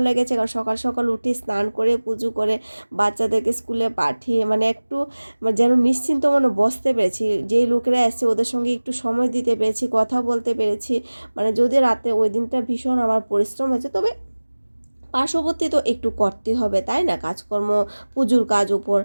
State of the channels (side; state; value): both; inverted; correlation -1.00